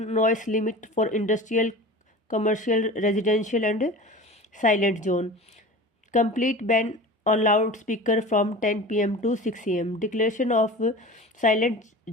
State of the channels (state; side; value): normal; both; correlation 0.36